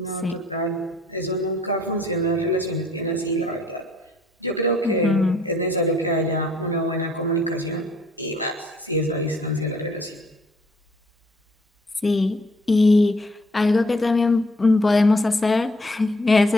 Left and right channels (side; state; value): both; normal; correlation 0.62